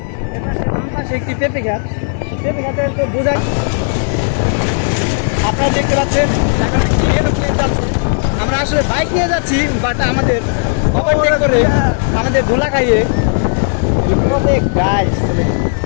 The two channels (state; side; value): silent; right; digital silence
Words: এপাশে বাম পাশে একটি পেঁপে গাছ, পেঁপে গাছের তো বোঝা আপনারা দেখতে পাচ্ছেন। আমরা আসলে বাইক নিয়ে যাচ্ছি, বাট আমাদের ওভারটেক করে আমাদের ধুলা খাইয়ে গাইস